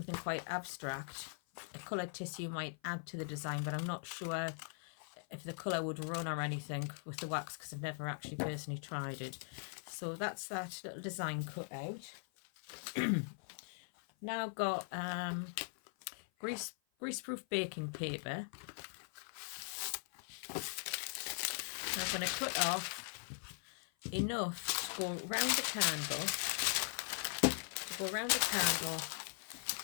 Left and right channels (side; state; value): right; silent; 51 dB below the other